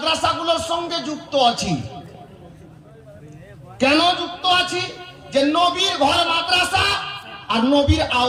সঙ্গে যুক্ত আছি। কেন যুক্ত আছি? যে নবীর ঘর মাদ্রাসা আর নবীর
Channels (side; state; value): both; identical; correlation 1.00